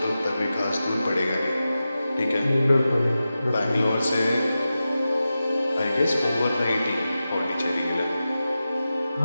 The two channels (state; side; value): inverted; both; correlation -0.93